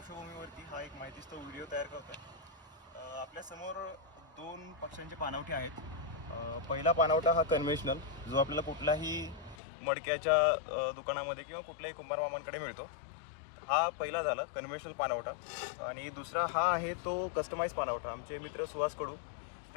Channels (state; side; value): drops out; right; at 9.6 s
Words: हा एक माहितीस्तव व्हिडिओ तयार करतो आहे. आपल्यासमोर दोन पक्ष्यांचे पाणवठे आहेत. पहिला पाणवठा हा कन्व्हेन्शनल, जो आपल्याला कुठलाही मडक्याच्या दुकानामध्ये किंवा कुठल्याही कुंभार मामांकडे मिळतो. हा पहिला झाला कन्व्हेन्शनल पाणवठा. आणि दुसरा हा आहे तो कस्टमाइज पाणवठा. आमचे मित्र सुहास कडू